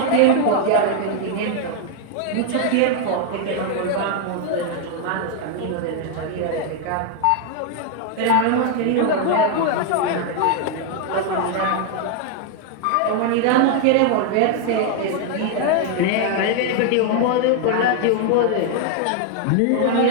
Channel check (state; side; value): different; both; correlation 0.00